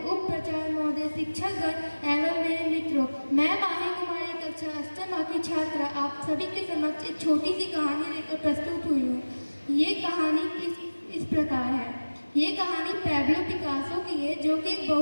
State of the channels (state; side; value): inverted; both; correlation -1.00